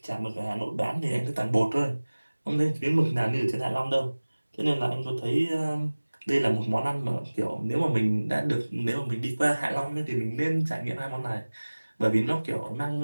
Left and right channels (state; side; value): inverted; both; correlation -1.00